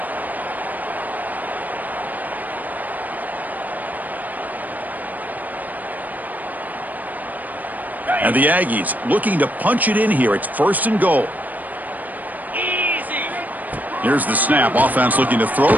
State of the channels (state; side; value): late; left; 0.081 ms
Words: And the Aggies looking to punch it in here. It's first and goal. Here's the snap. Offense looking to throw